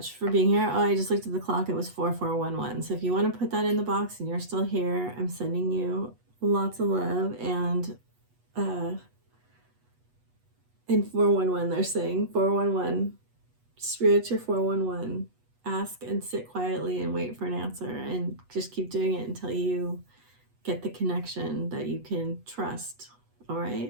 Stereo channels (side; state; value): left; late; 8.2 ms